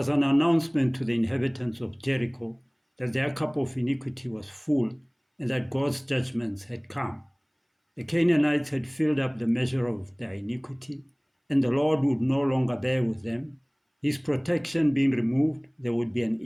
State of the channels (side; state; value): both; identical; correlation 1.00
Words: an announcement to the inhabitants of Jericho that their cup of iniquity was full and that God's judgments had come. The Canaanites had filled up the measure of their iniquity, and the Lord would no longer bear with them. His protection being removed, there would be an